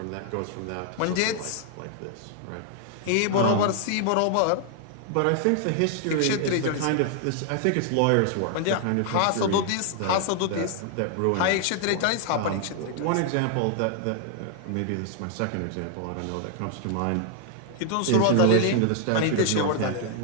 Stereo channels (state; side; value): different; both; correlation 0.00